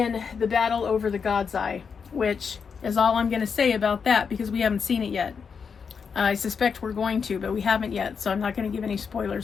the battle over the God's Eye, which is all I'm going to say about that, because we haven't seen it yet. I suspect we're going to, but we haven't yet, so I'm not going to give any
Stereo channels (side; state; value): right; quieter; 6.1 dB